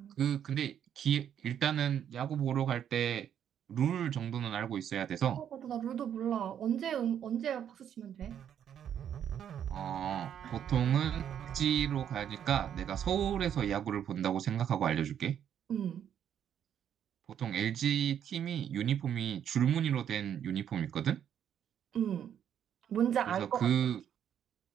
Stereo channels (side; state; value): left; quieter; 9.3 dB